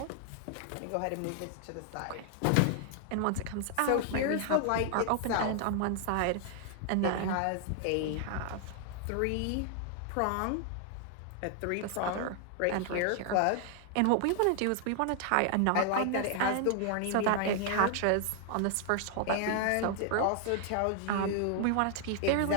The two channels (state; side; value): different; both; correlation 0.00